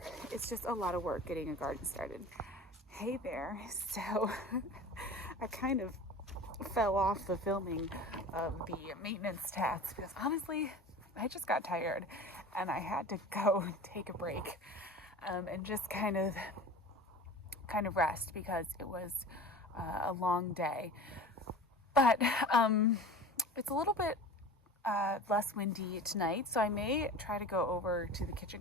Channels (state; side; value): normal; both; correlation 0.37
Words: It's just a lot of work getting a garden started. Hey there. So I kind of fell off the filming of the maintenance tasks because honestly, I just got tired and I had to go take a break and just kind of rest because it was a long day. But it's a little bit less windy tonight, so I may try to go over to the